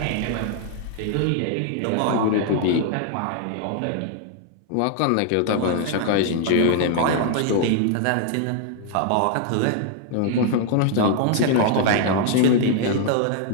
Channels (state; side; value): different; both; correlation 0.00